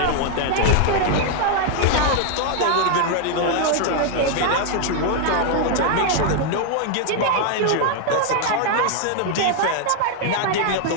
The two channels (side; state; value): both; different; correlation 0.00